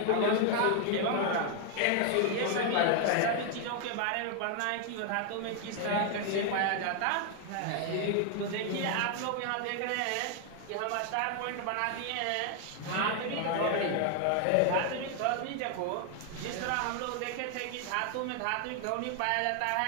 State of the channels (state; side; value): different; both; correlation 0.00